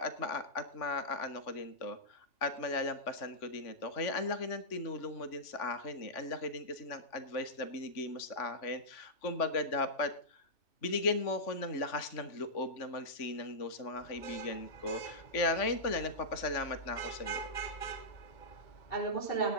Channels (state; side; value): late; right; 3.5 ms